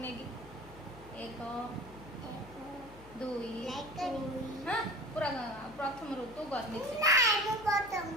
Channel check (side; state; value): left; noise; hum, 19 dB below the sound